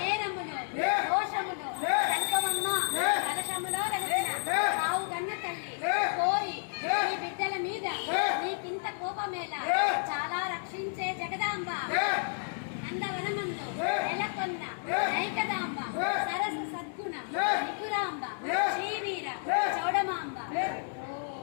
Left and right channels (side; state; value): right; silent; digital silence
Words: దోషములు సంకమమ్మ కలశములో వెలసిన ఆవు గన్న తల్లి కోరి నీ బిడ్డల మీద నీకింత కోపమేలా చాలా రక్షించే జగదాంబ నందవనమందు నెలకొన్న నైకదాంబ సరస సద్గుణ నిపురాంబ శ్రీవీర చౌడమాంబ